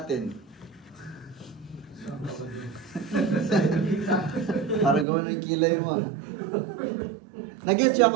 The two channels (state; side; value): drops out; left; at 5.1 s